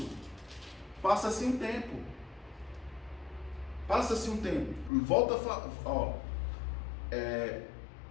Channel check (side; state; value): right; drops out; at 4.9 s